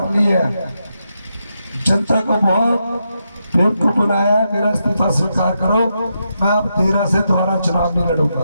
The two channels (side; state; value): both; inverted; correlation -0.84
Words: लिया है, जनता को बहुत बेवकूफ बनाया है, मेरा इस्तीफा स्वीकार करो, मैं अब 13 से दोबारा चुनाव नहीं